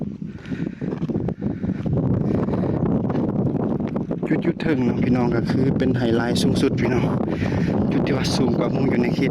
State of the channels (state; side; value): identical; both; correlation 1.00